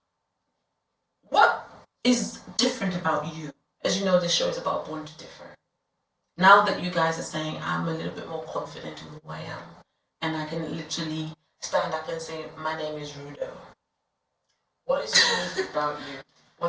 what is different about you? As you know, this show is about Born to Differ. Now that you guys are saying, I'm a little bit more confident in who I am, and I can literally stand up and say, my name is Rudo. What is unique about you?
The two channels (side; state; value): both; identical; correlation 1.00